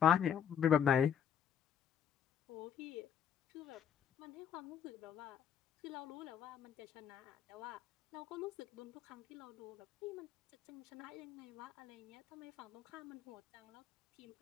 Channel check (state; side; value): quieter; right; 8.7 dB